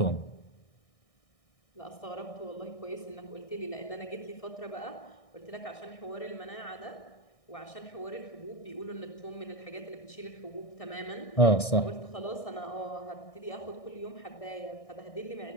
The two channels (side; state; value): right; late; 1.6 ms